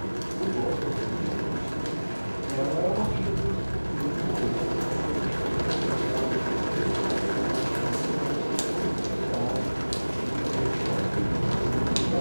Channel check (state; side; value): inverted; both; correlation -1.00